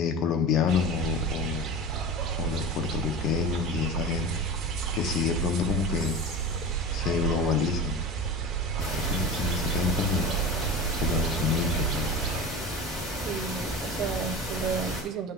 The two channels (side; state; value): both; normal; correlation 0.31